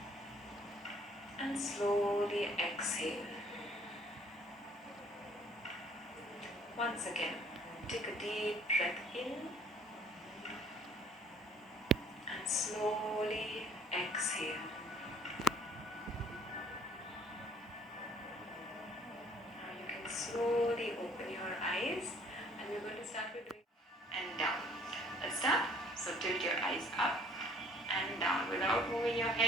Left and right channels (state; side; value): normal; both; correlation 0.56